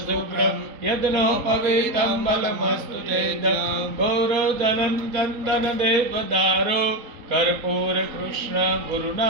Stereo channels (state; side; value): late; left; 4.0 ms